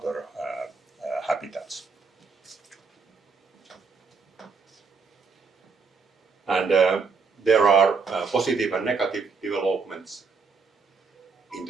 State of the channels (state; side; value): quieter; left; 5.0 dB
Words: habitats. positive and negative developments in